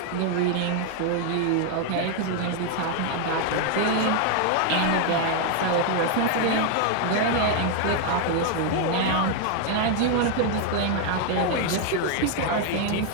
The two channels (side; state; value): both; different; correlation 0.00